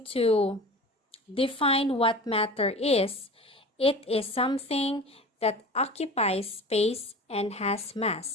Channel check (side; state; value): both; normal; correlation 0.37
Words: to define what matter is, it is something that occupies space and has